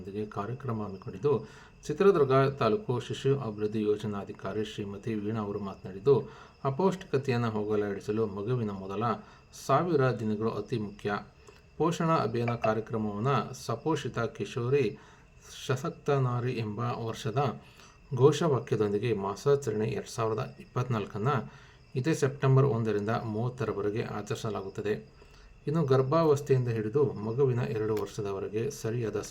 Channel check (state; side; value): identical; both; correlation 1.00